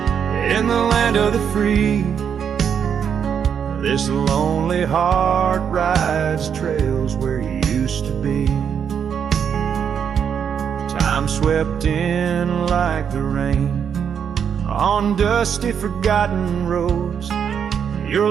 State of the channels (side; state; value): left; quieter; 7.7 dB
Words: In the land of the free, this lonely heart rides trails where you used to be. Time swept in like the rain on dusty forgotten roads. Your